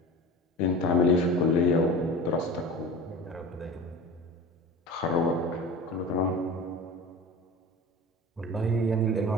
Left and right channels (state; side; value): normal; both; correlation 0.34